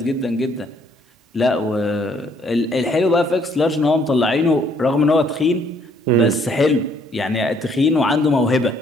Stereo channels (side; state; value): both; normal; correlation 0.65